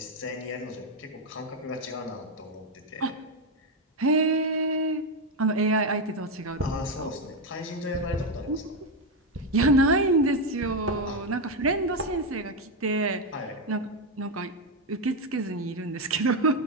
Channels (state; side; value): normal; both; correlation 0.07